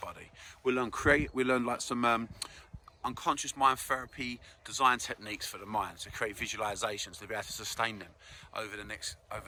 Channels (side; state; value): both; identical; correlation 1.00